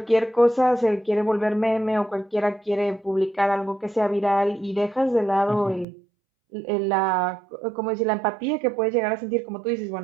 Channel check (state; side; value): drops out; left; at 5.9 s